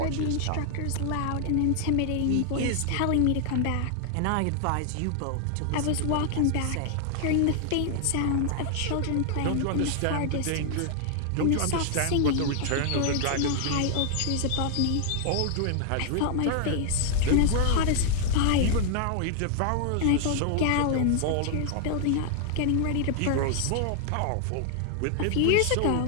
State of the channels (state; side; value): different; both; correlation 0.00